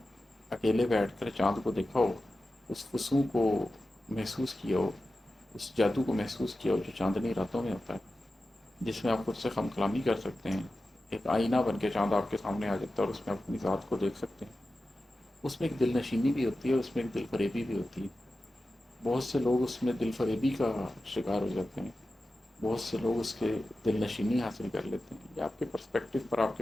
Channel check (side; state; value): both; normal; correlation 0.93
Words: اکیلے بیٹھ کر چاند کو دیکھا ہو، اس خشوع کو محسوس کیا ہو، اس جادو کو محسوس کیا ہو جو چاندنی راتوں میں ہوتا ہے، جس میں آپ خود سے خم کلامی کر سکتے ہیں، ایک آئینہ بن کے چاند آپ کے سامنے آ جاتا ہے اور اس میں اپنی ذات کو دیکھ سکتے ہیں۔ اس میں ایک دل نشینی بھی ہوتی ہے، اس میں ایک دل فریبی بھی ہوتی ہے۔ بہت سے لوگ اس میں دل فریبی کا شکار ہو جاتے ہیں، بہت سے لوگ اس کے دل نشینی حاصل کر لیتے ہیں۔ یہ آپ کے پرسپیکٹو پر، آپ